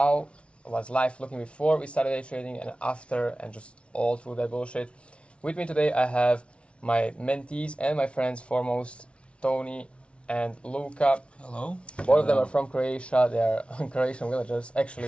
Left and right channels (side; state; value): right; late; 0.060 ms